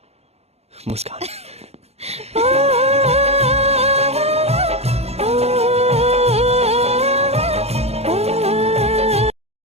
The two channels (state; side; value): late; left; 0.30 ms